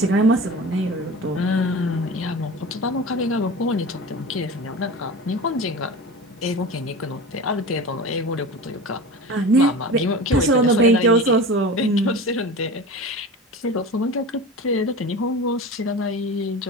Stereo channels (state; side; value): normal; both; correlation 0.32